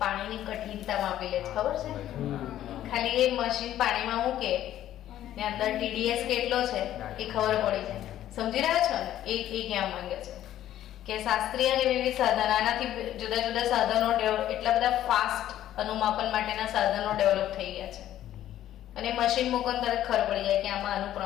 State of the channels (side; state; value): right; quieter; 12.4 dB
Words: પાણીની કઠિનતા માપી લે છે, ખબર છે? ખાલી એ મશીન પાણીમાં મૂકે ને અંદર TDS કેટલો છે એ ખબર પડી જાય. સમજી રહ્યા છો ને? એ કહેવા માંગે છે કે શાસ્ત્રીય અને વિવિધ સાધન, આનાથી જુદા જુદા સાધનો એટલા બધા ફાસ્ટ અનુમાપન માટેના સાધનો ડેવલપ થઈ ગયા છે અને મશીન મૂકો તરત ખબર પડી જાય કે આમાં આનું